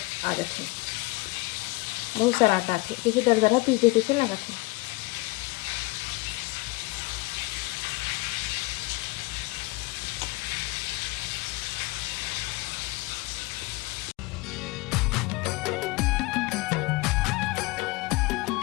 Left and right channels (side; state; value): right; quieter; 22.9 dB